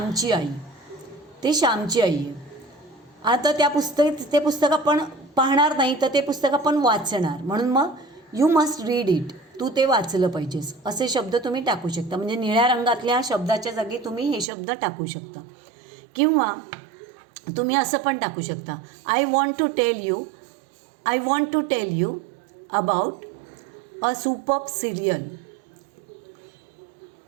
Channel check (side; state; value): left; drops out; at 14.5 s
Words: आई. ते श्यामची आई आहे. आता ते पुस्तक आपण पाहणार नाही तर ते पुस्तक आपण वाचणार, म्हणून मग यू मस्ट रीड इट. तू ते वाचलं पाहिजेस असे शब्द तुम्ही टाकू शकता. म्हणजे निळ्या रंगातल्या शब्दाच्या जागी तुम्ही हे शब्द टाकू शकता. किंवा तुम्ही असं पण टाकू शकता, I want to tell you about a superb serial.